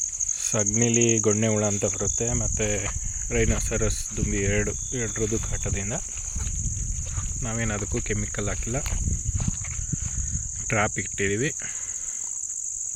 ಸಗಣಿಲಿ ಗೊಣ್ಣೆ ಹುಳ ಅಂತ ಬರುತ್ತೆ, ಮತ್ತು ರೈನೋಸರಸ್ ದುಂಬಿ ಎರಡರದ್ದು ಕಾಟದಿಂದ. ನಾವೇನು ಅದಕ್ಕೂ ಕೆಮಿಕಲ್ ಹಾಕಿಲ್ಲ, ಟ್ರ್ಯಾಪ್ ಇಟ್ಟಿದ್ದೀವಿ.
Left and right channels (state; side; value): identical; both; correlation 1.00